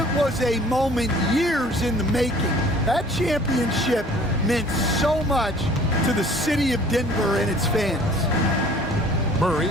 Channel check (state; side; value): normal; both; correlation 0.51